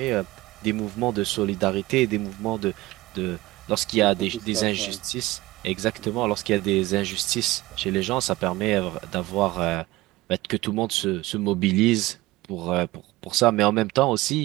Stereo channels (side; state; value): left; quieter; 19.2 dB